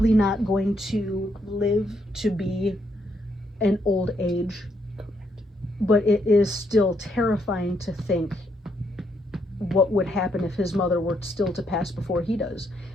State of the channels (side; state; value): both; normal; correlation 0.75